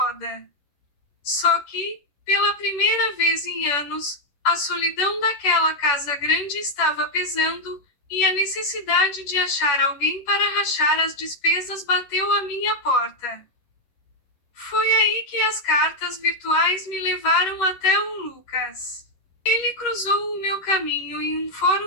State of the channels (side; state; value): right; late; 10 ms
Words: Só que, pela primeira vez em anos, a solidão daquela casa grande estava pesando, e a necessidade de achar alguém para rachar as despesas bateu à minha porta. Foi aí que as cartas virtuais me levaram até o Lucas. Ele cruzou o meu caminho em um